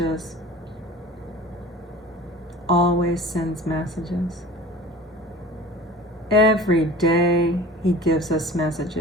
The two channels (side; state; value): both; normal; correlation 0.40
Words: Always sends messages. Every day he gives us